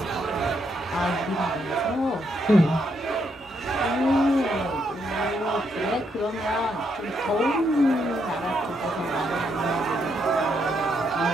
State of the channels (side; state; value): both; normal; correlation 0.77